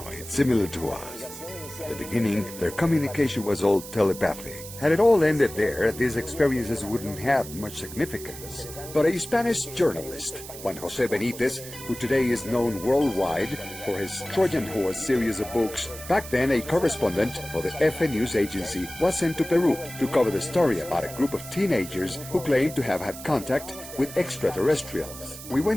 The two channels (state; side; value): noise; right; hiss, 13 dB below the sound